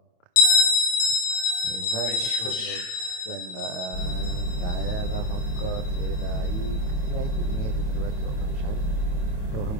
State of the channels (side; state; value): right; late; 28 ms